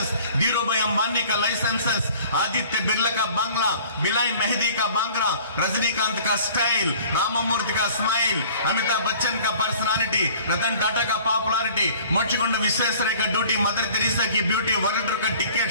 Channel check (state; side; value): inverted; both; correlation -0.49